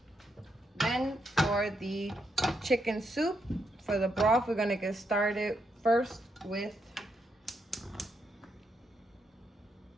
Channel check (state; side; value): normal; both; correlation 0.79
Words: Then for the chicken soup, for the broth, we're gonna get started first with